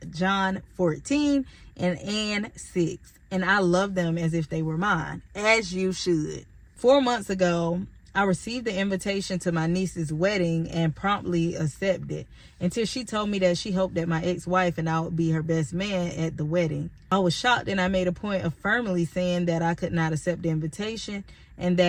John, 14, and Ann, 6. And I love them as if they were mine, as you should. 4 months ago, I received the invitation to my niece's wedding and promptly accepted, until she told me that she hoped that my ex-wife and I would be her best man at the wedding. I was shocked, and I made a point of firmly saying that I could not accept the invitation, and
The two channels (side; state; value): both; identical; correlation 1.00